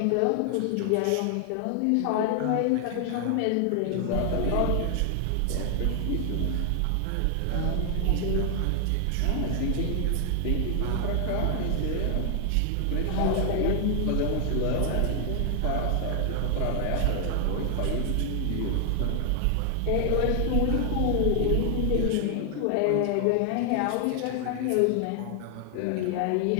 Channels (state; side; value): different; both; correlation 0.00